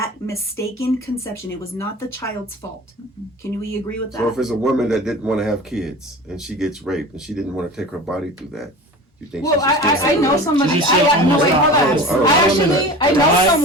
mistaken conception. It was not the child's fault. Can we agree with that? So if it's a woman that didn't want to have kids and she gets raped and she didn't want to take her body through that, you think Well, she should still I have know it? somebody. She just said No, wait, almost hold on. die. I actually, I know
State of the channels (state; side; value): normal; both; correlation 0.35